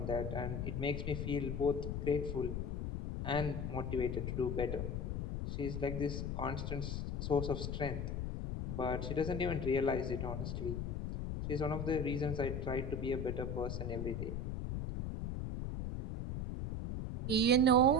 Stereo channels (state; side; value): noise; left; rumble, 2 dB below the sound